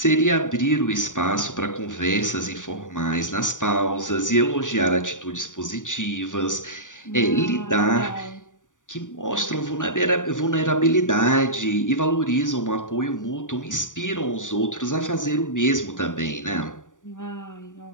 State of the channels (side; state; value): right; late; 0.87 ms